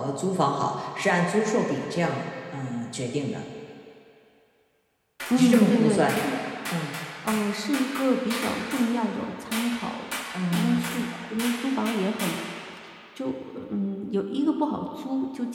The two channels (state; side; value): identical; both; correlation 1.00